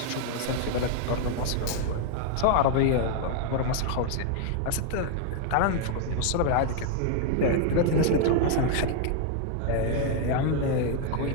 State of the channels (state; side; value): different; both; correlation 0.00